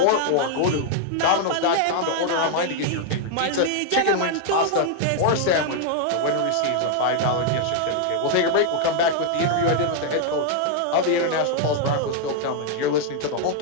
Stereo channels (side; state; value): both; different; correlation 0.00